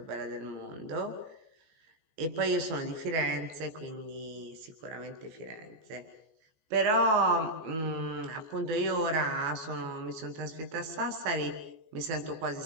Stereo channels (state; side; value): late; left; 14 ms